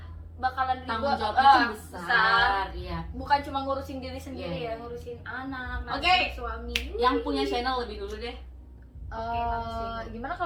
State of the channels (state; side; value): identical; both; correlation 1.00